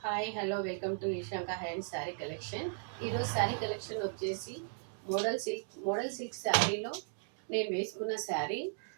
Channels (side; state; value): left; silent; digital silence